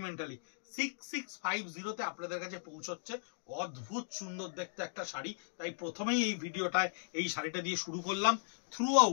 6650-তে আপনাদের কাছে পৌঁছচ্ছে। অদ্ভুত সুন্দর দেখতে একটা শাড়ি, তাই প্রথমেই এই ভিডিওটায় এই শাড়িটা দিয়ে শুরু করলাম। থ্রু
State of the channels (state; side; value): silent; right; digital silence